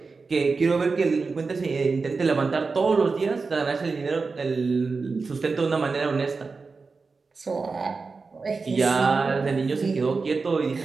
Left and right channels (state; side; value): quieter; left; 4.4 dB